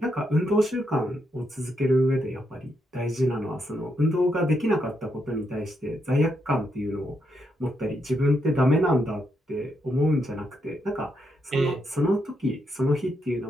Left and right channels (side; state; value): both; normal; correlation 0.80